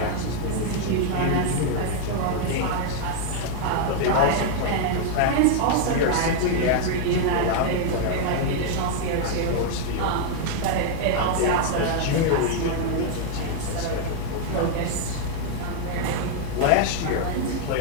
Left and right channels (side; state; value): both; different; correlation 0.00